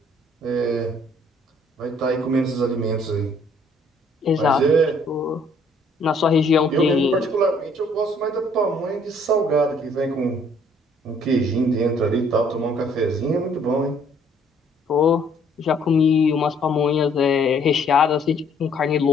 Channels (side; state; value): both; normal; correlation 0.62